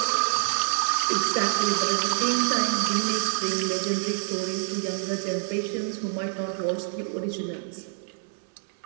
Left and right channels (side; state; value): left; silent; digital silence